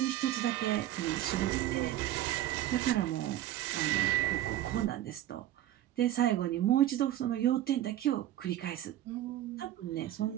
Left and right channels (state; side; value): quieter; left; 13.0 dB